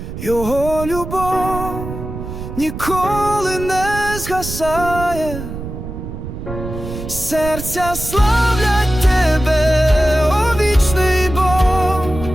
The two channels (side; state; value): right; noise; rumble, 8 dB below the sound